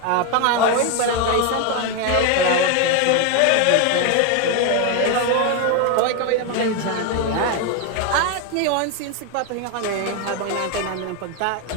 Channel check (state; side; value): different; both; correlation 0.01